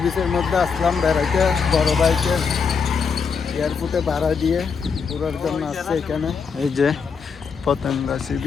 বিচের মধ্যে আসলাম বেড়াইতে, বড় বাইকের এয়ারপোর্টে ভাড়া দিয়ে ঘোরার জন্য আসছে এখানে। এই যে পতেঙ্গা সি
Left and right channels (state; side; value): quieter; right; 5.8 dB